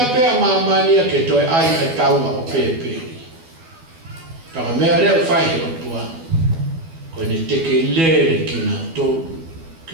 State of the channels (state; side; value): late; left; 12 ms